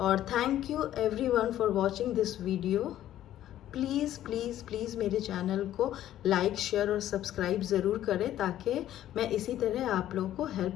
thank you everyone for watching this video. Please please please मेरे चैनल को लाइक शेयर और सब्सक्राइब ज़रूर करें ताकि मैं इसी तरह आप लोगों को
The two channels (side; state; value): right; quieter; 12.5 dB